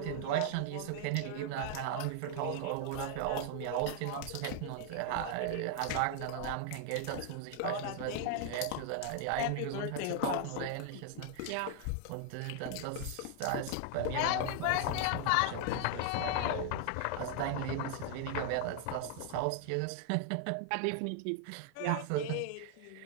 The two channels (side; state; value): both; different; correlation 0.00